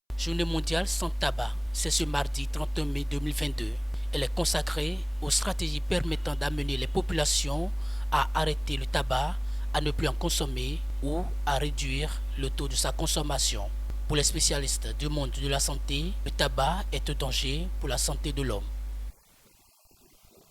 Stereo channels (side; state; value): both; identical; correlation 1.00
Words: Journée mondiale sans tabac, c'est ce mardi 31 mai 2022. Elle est consacrée aux stratégies permettant d'amener les populations à arrêter le tabac, à ne plus en consommer ou à réduire le taux de sa consommation. Pour les spécialistes du monde de la santé, le tabac est un danger pour la santé de l'homme.